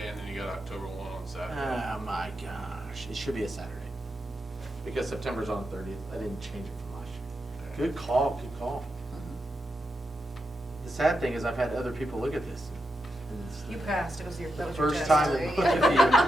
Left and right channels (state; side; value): normal; both; correlation 0.86